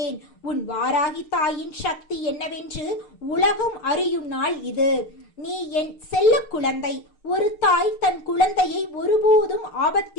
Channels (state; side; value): late; right; 6.6 ms